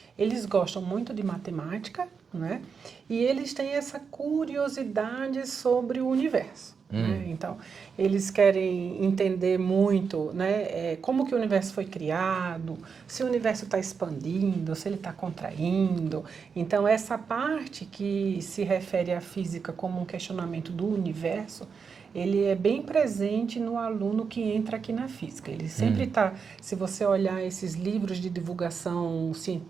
eles gostam muito de matemática, né? E eles têm essa curiosidade sobre o universo. Né? Então, eles querem entender muito, né, como que o universo foi criado, se o universo está expandindo, se ele está contraindo. Então, essa parte que se refere à física como um questionamento do universo, ele é bem presente no aluno que entra aqui na física. Ele sempre está, se você olhar esses livros de divulgação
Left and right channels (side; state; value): left; quieter; 5.9 dB